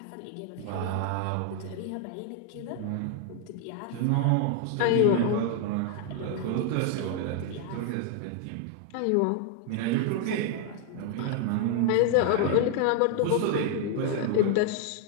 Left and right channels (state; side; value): different; both; correlation 0.00